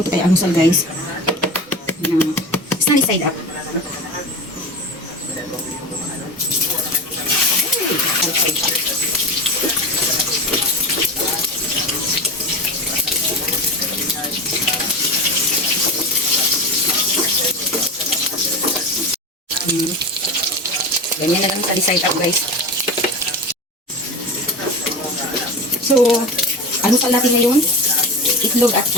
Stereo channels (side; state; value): both; normal; correlation 0.27